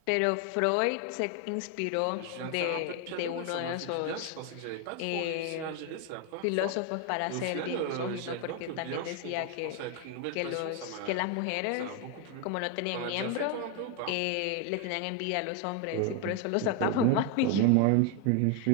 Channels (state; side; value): different; both; correlation 0.01